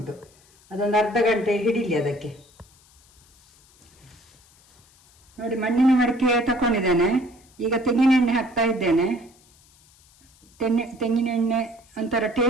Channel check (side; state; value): left; noise; hiss, 30 dB below the sound